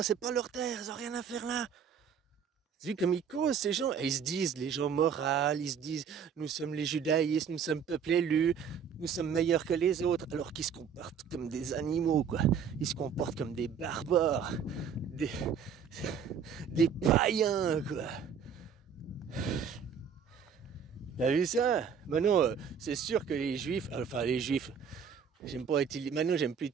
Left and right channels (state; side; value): quieter; left; 7.0 dB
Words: c'est pas leur terre, ils ont rien à faire là. Tu vois comme ils causent ces gens, et ils se disent, les gens moraux, ils se disent, nous sommes les judaïstes, nous sommes peuple élu, nous sommes meilleurs que les autres, alors qu'ils se comportent comme des animaux, quoi. Ils se comportent comme des barbares, des païens, quoi. T'as vu ça? Maintenant, c'est sûr que les juifs, maintenant j'aime plus